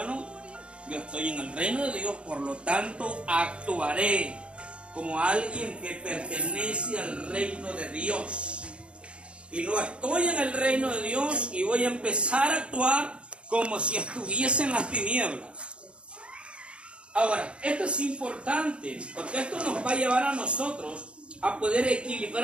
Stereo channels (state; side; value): late; left; 0.058 ms